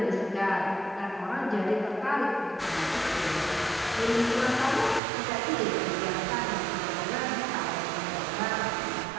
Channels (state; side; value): drops out; left; at 5.0 s